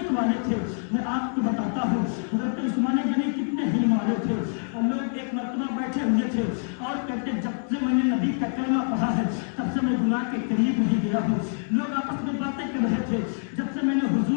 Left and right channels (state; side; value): silent; right; 61 dB below the other